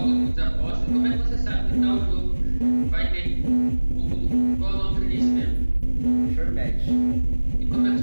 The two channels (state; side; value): inverted; both; correlation -1.00